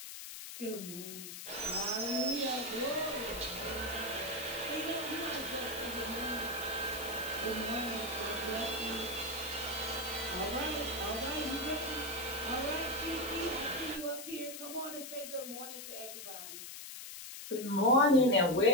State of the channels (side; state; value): left; noise; hiss, 10 dB below the sound